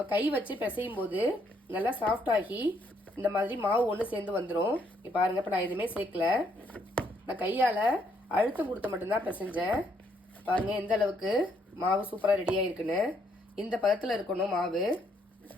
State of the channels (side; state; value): both; normal; correlation 0.71